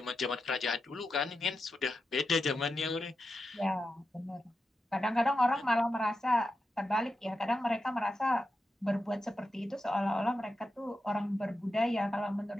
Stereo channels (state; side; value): normal; both; correlation 0.89